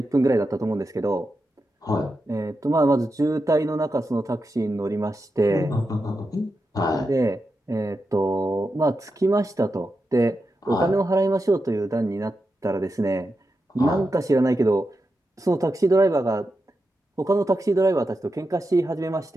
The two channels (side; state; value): both; normal; correlation 0.88